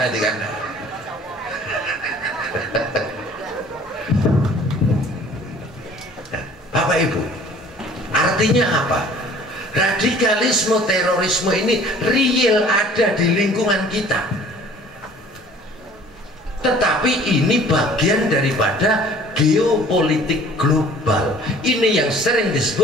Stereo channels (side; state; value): both; normal; correlation 0.51